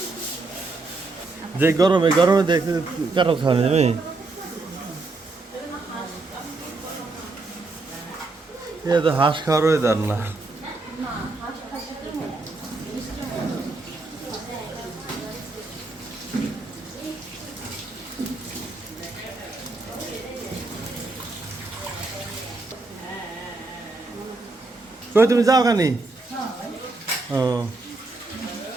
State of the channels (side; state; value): left; quieter; 3.4 dB